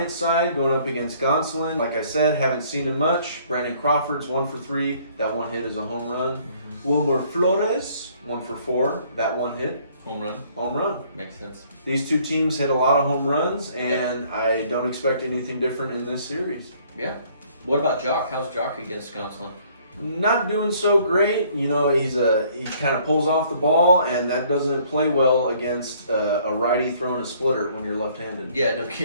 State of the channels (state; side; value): inverted; both; correlation -0.61